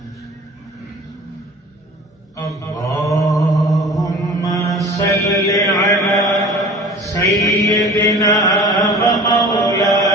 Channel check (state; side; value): normal; both; correlation 0.42